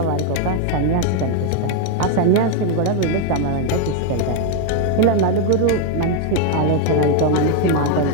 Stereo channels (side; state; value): both; different; correlation 0.00